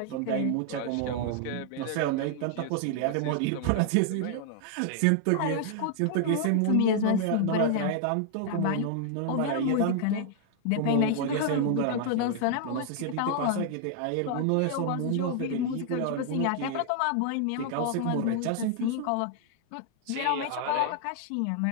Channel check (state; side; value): different; both; correlation -0.01